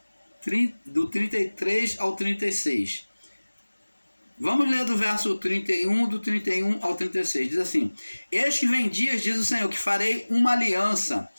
do 33 ao 36. Vamos ler do verso 31, do 31 ao 36. Diz assim: eis que vem dias, diz o Senhor, que farei uma aliança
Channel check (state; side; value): inverted; both; correlation -1.00